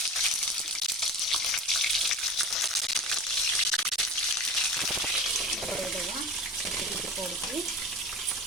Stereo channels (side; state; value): both; normal; correlation 0.34